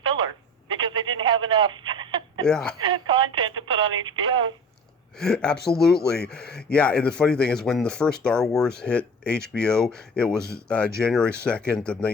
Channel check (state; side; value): normal; both; correlation 0.40